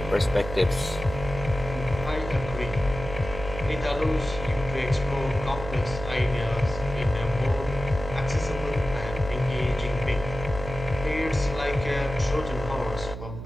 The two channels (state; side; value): noise; right; hum, 9 dB below the sound